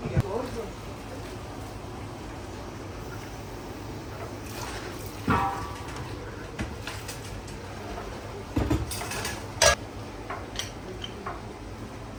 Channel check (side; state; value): both; identical; correlation 1.00